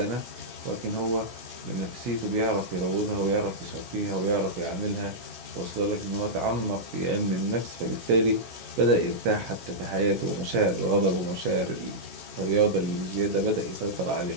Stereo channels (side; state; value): left; late; 16 ms